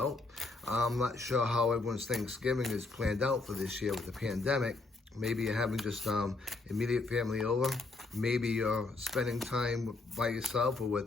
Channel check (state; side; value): quieter; right; 3.6 dB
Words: I'm not sure how everyone's Thanksgiving is planned out for this year with the pandemic. Maybe you're having just immediate family over. Maybe you're spending time by yourself or